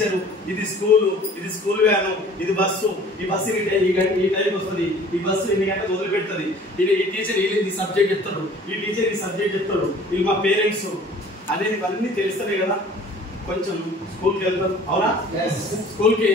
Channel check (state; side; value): normal; both; correlation 0.49